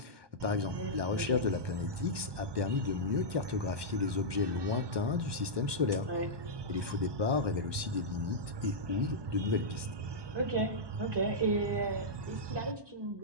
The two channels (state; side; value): late; left; 1.2 ms